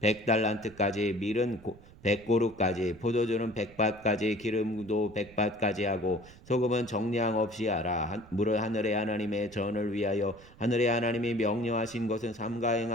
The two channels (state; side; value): noise; right; rumble, 22 dB below the sound